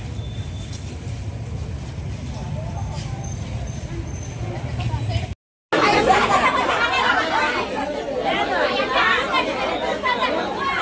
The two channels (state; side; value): identical; both; correlation 1.00